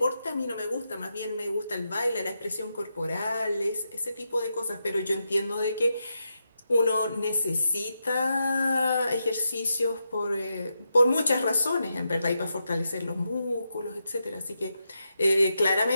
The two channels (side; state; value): both; inverted; correlation -0.86